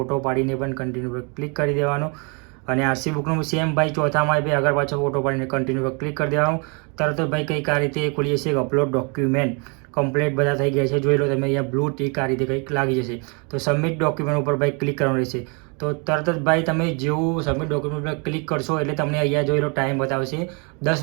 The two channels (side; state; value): left; quieter; 33.8 dB